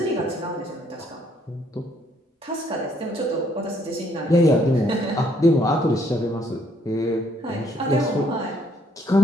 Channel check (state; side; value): normal; both; correlation 0.67